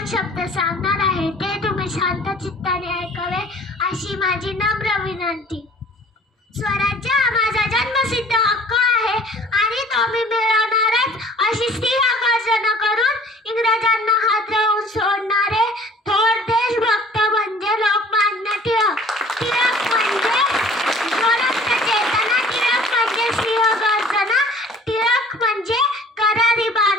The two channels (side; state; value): both; normal; correlation 0.50